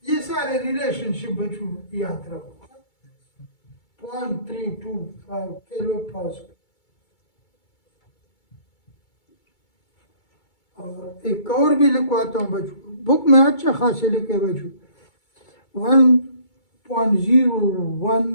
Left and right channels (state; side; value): late; right; 2.3 ms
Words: ये सारे रिलेशनशिप बच्चों याद रखो. 0.325 किलो पास्कल. और एक और भी लिखवाता हूँ बच्चों, बुक में अच्छा खासे लिखे बच्चों. 1.01